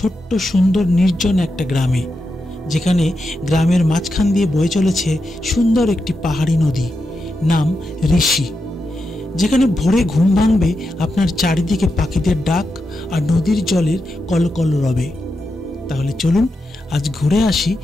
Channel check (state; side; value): normal; both; correlation 0.87